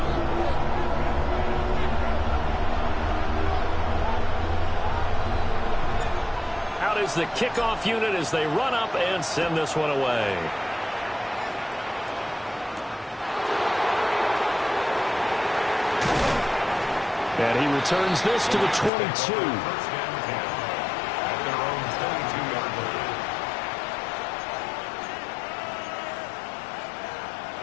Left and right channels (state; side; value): drops out; right; at 18.9 s